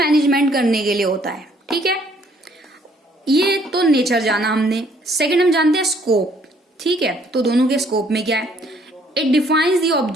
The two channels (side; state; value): both; normal; correlation 0.63